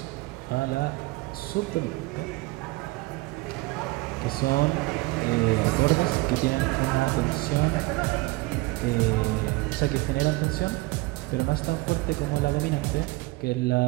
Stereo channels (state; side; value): quieter; left; 21.8 dB